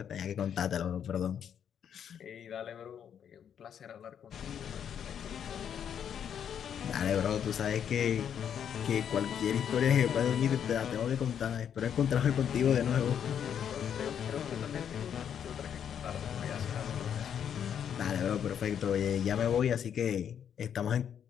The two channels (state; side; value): quieter; right; 8.6 dB